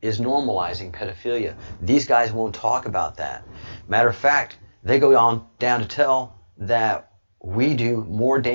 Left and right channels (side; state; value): both; inverted; correlation -1.00